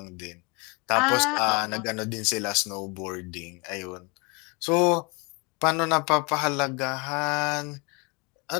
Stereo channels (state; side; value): quieter; right; 29.7 dB